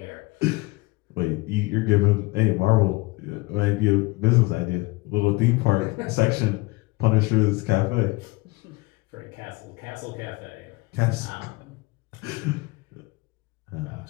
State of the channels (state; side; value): quieter; right; 23.6 dB